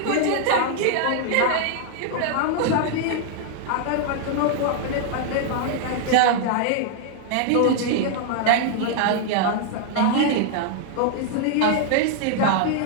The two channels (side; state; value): both; different; correlation 0.00